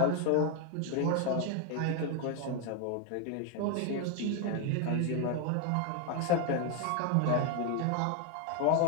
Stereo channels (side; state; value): both; different; correlation 0.00